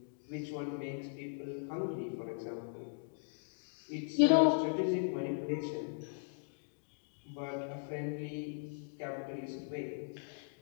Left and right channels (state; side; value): silent; right; digital silence